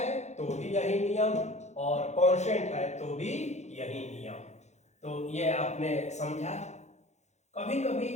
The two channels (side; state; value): right; late; 0.33 ms